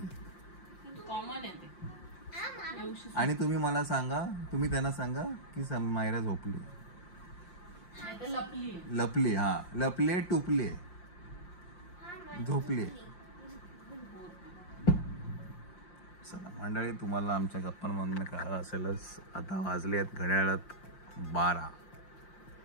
आणि तुम्ही मला सांगा, तुम्ही त्यांना सांगा की मायरा झोपली. लपली. हा लपले टुपले झोपले. चला मंडळी तुम्हाला आमच्या गप्पांमधून कळलं असेलच. आता वाजले आहेत घड्याळात 12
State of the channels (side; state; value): right; late; 5.7 ms